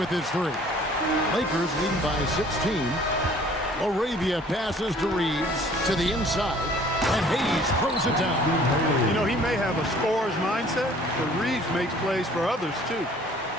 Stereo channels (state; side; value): normal; both; correlation 0.54